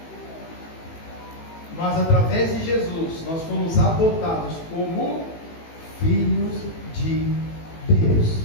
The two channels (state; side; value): late; right; 18 ms